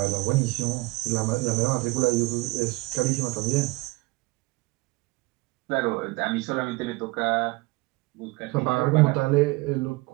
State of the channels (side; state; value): left; quieter; 23.0 dB